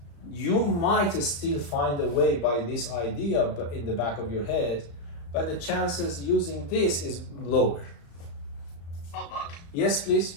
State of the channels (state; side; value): late; right; 35 ms